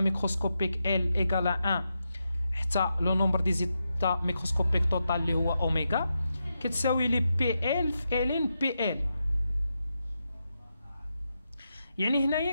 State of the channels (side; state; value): both; inverted; correlation -0.86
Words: L égale à 1 حتى لو نومبر دي زيتا ميكروسكوبيك توتال اللي هو اوميغا كتساوي لي بي ال في ال بي ال. يعني هنايا